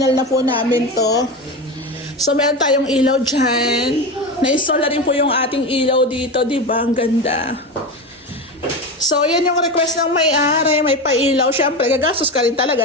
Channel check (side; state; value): both; normal; correlation 0.21